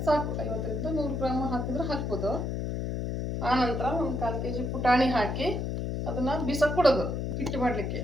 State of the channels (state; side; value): noise; left; hum, 2 dB below the sound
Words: ಸಾಕು. 50ರಿಂದ 100 ಗ್ರಾಮ್ ಹಾಕಿದ್ರೆ ಹಾಕ್ಬೋದು. ಆನಂತರ ಒಂದು 1/4 ಕೆ ಜಿ ಪುಟಾಣಿ ಹಾಕಿ ಅದನ್ನು ಬಿಸಕ್ಕೆ ಕೊಡೋದು. ಹಿಟ್ಟು ಮಾಡಲಿಕ್ಕೆ